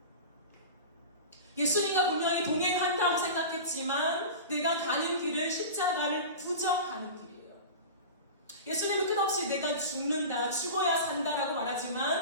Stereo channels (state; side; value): inverted; both; correlation -0.30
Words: 예수님과 분명히 동행한다고 생각했지만 내가 가는 길은 십자가를 부정하는 길이에요. 예수님은 끝없이 내가 죽는다, 죽어야 산다라고